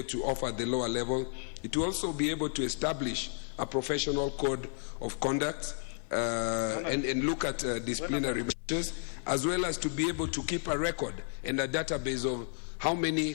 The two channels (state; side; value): silent; right; 56 dB below the other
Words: to offer at the lower level. It will also be able to establish a professional code of conduct and look at disciplinary measures, as well as to be able to keep a record and a database of how many